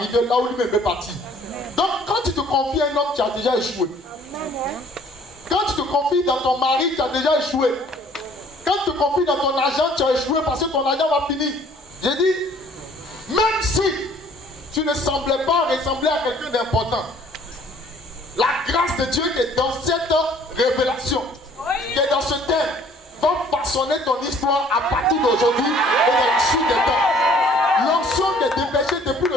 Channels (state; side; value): normal; both; correlation 0.56